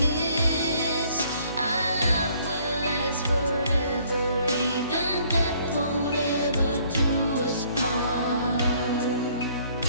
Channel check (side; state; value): both; inverted; correlation -0.62